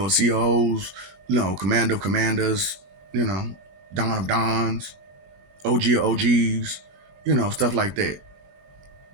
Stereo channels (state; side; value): late; left; 21 ms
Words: of COs, Commander of Commanders, Don of Dons, OG of OGs, stuff like that.